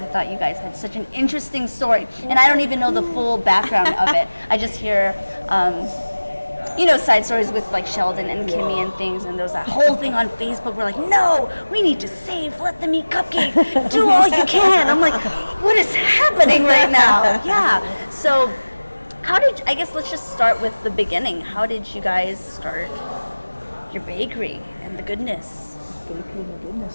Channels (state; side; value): inverted; both; correlation -1.00